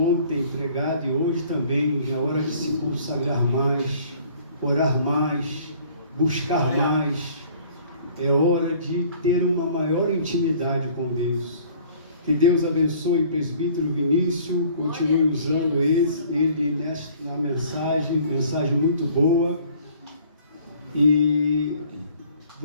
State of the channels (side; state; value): both; inverted; correlation -0.54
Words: pregado e hoje também, é hora de se consagrar mais, orar mais, buscar mais. É hora de ter uma maior intimidade com Deus. Que Deus abençoe o presbítero Vinícius, continue usando ele na mensagem muito boa. E